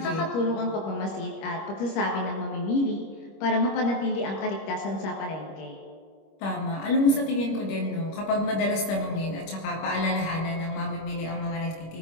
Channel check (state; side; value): late; right; 25 ms